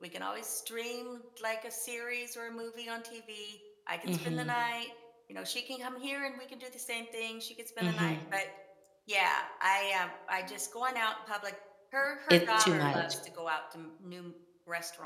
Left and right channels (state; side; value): identical; both; correlation 1.00